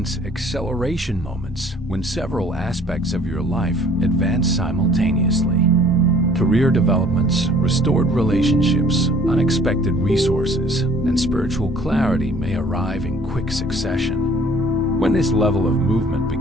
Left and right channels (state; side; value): normal; both; correlation 0.55